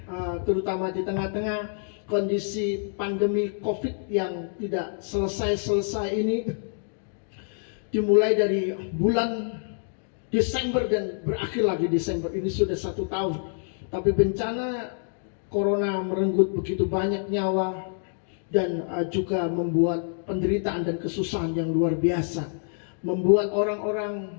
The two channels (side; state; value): right; silent; digital silence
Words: terutama di tengah-tengah kondisi pandemi COVID yang tidak selesai-selesai ini. Dimulai dari bulan Desember dan berakhir lagi Desember, ini sudah 1 tahun. Tapi bencana Corona merenggut begitu banyak nyawa dan juga membuat penderitaan dan kesusahan yang luar biasa, membuat